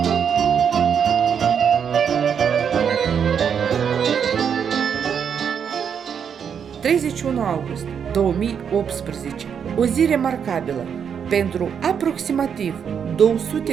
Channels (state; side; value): quieter; left; 7.5 dB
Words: August 2018, o zi remarcabilă pentru aproximativ